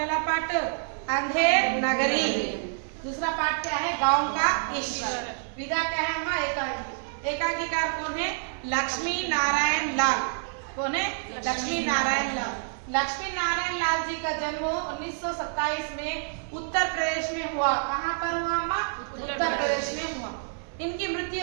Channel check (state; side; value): silent; left; digital silence